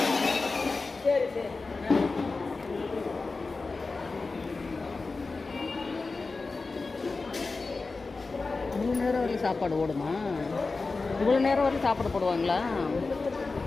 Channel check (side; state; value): right; quieter; 3.9 dB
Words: சரி சரி. 3 நேரம் வரையும் சாப்பாடு ஓடுமா? இவ்வளோ நேரம் வரையும் சாப்பாடு போடுவாங்களா?